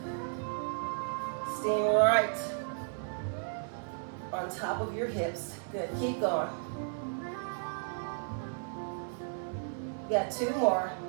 Staying right on top of your hips. Good, keep going. You got 2 more.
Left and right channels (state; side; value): silent; left; 55 dB below the other